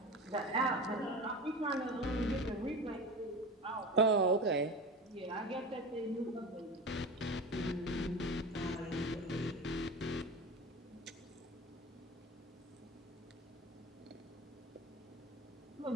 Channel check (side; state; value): both; normal; correlation 0.30